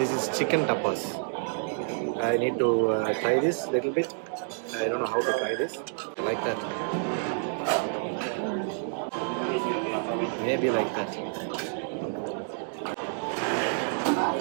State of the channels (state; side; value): silent; left; digital silence